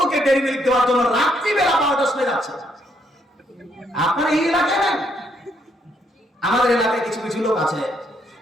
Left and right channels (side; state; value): both; normal; correlation 0.73